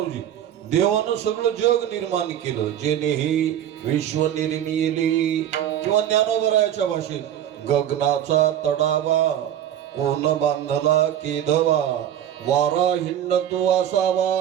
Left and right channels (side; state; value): left; quieter; 10.7 dB